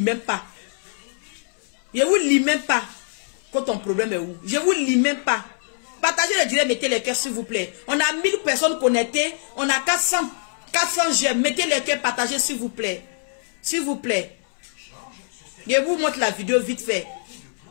pas. Je vous lis même pas. Quand ton problème est où? Je vous lis même pas. Partagez le direct, mettez les cœurs s'il vous plaît. On a 1000 personnes connectées. On a 400 j'aime. Mettez les cœurs, partagez s'il vous plaît. S'il vous plaît. Je vous montre la vidéo vite fait.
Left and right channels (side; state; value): right; silent; 63 dB below the other